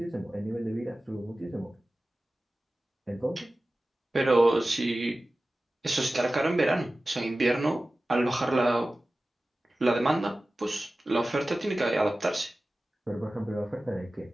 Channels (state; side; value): normal; both; correlation 0.96